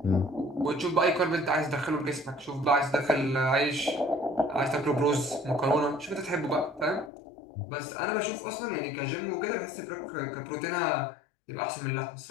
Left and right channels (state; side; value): drops out; right; at 7.1 s